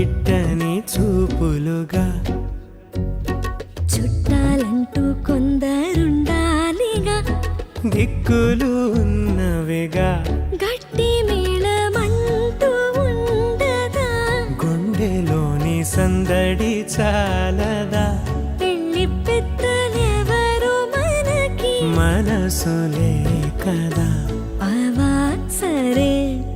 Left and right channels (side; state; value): both; identical; correlation 1.00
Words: చూపులుగా చుట్టాలంటూ కొందరుండాలిగా దిక్కులు ఉన్నవిగా గట్టి మేళమంటూ ఉండదా గుండెలోని సందడి చాలదా పెళ్లి పెద్దలెవరు మనకి మనసులే కదా అవా సరే